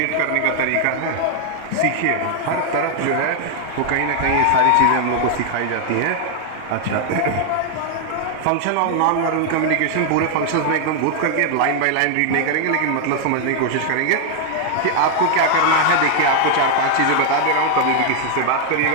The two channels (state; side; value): different; both; correlation 0.00